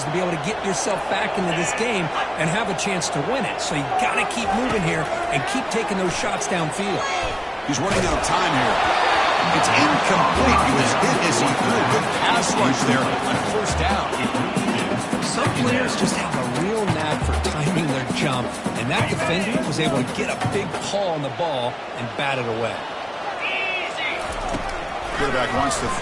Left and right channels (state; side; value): identical; both; correlation 1.00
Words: to be able to get yourself back into this game and have a chance to win it. So you got to keep moving here and keep taking those shots downfield. He's running out of time here. It's incomplete. He was hit as he threw a good pass rush there on first down. Some players just have a real knack for timing their jump, and that defender was able to get a big paw on the ball and bat it away. Quarterback wants to